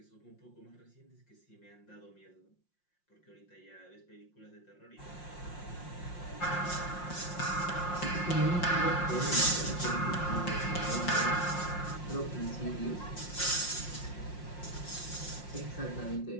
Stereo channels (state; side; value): late; right; 5.6 ms